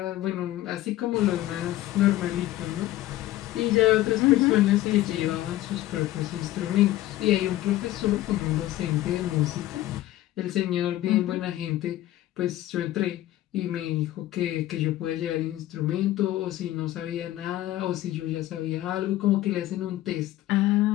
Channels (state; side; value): quieter; right; 15.0 dB